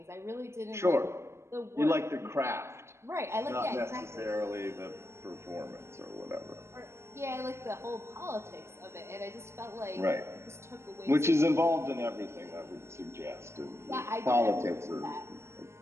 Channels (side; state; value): left; late; 0.13 ms